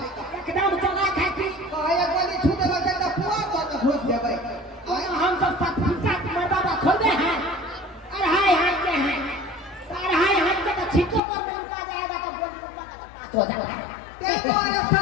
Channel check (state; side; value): drops out; right; at 11.2 s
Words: एकदम चला खाई थी। कहे गोली छूट लगे तो पुआ तो न घुस जेबै। हम सब साथ मर्दाबा खोलते हैं अढ़ाई हाथ के हैं। अढ़ाई हाथ के तो छिटो पर में लुका जाएगा तो गोली को पास हो जाता है। ते तोरे